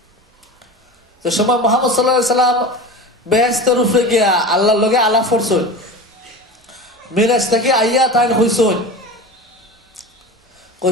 যে সময় মুহাম্মদ সাল্লাল্লাহু আলাইহি ওয়াসাল্লাম বেহেশতের উপরে গিয়া আল্লাহর লগে আলাপ করছেন। মেরাজ থেকে আইয়া তাই হইছেন,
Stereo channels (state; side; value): normal; both; correlation 0.31